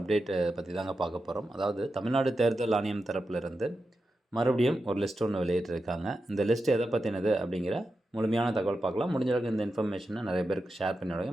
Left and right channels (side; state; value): both; normal; correlation 0.89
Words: பற்றி தாங்க பார்க்க போகிறோம். அதாவது தமிழ்நாடு தேர்தல் ஆணையம் தரப்பிலிருந்து மறுபடியும் ஒரு லிஸ்ட் ஒன்று வெளியிட்டிருக்காங்க. இந்த லிஸ்ட் எதை பற்றினது அப்படிங்கிற முழுமையான தகவல் பார்க்கலாம். முடிஞ்ச அளவுக்கு இந்த இன்ஃபர்மேஷனை நிறைய பேருக்கு ஷேர் பண்ணி